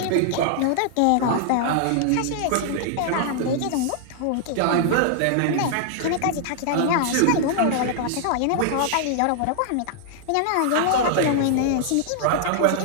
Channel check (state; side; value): different; both; correlation -0.01